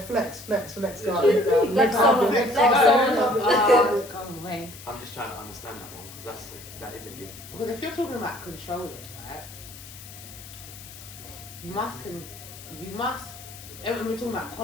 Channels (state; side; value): noise; left; hiss, 16 dB below the sound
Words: Flex Guys. on, Flex flex on. Come away. I'm just trying to understand that one because that is a gift. Because if you're talking about controlling, right? You must. We're talking about